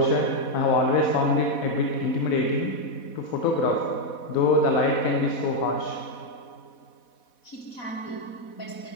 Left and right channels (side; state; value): right; late; 4.1 ms